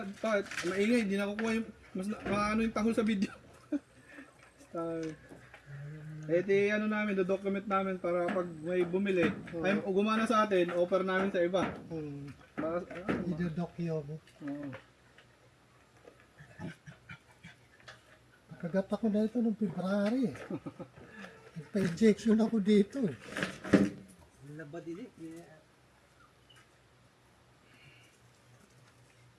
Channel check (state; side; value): identical; both; correlation 1.00